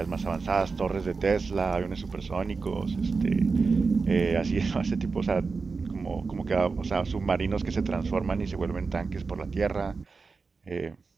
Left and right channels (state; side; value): quieter; left; 4.5 dB